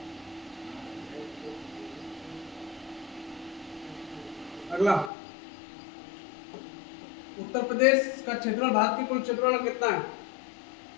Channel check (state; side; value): drops out; right; at 5.1 s